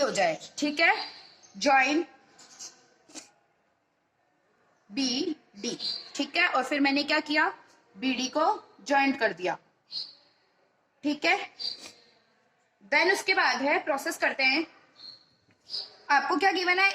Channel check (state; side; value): identical; both; correlation 1.00